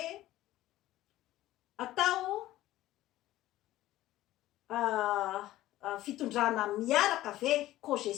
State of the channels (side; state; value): right; quieter; 15.4 dB